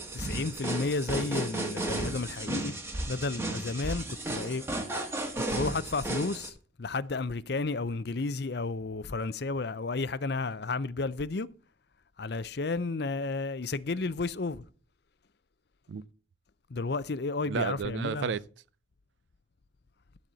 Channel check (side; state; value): both; normal; correlation 0.32